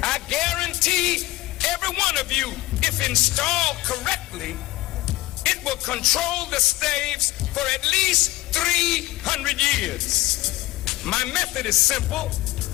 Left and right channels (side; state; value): right; quieter; 18.8 dB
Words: I guarantee every one of you, if installed correctly, it will control the slaves for at least 300 years. My method is simple.